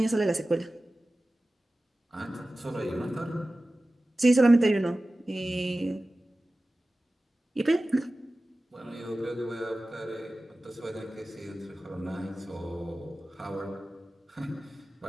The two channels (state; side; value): normal; both; correlation 0.96